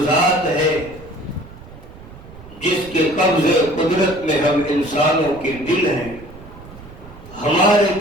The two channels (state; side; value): noise; right; rumble, 18 dB below the sound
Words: ذات ہے جس کے قبضے قدرت میں ہم انسانوں کے دل ہیں، ہمارے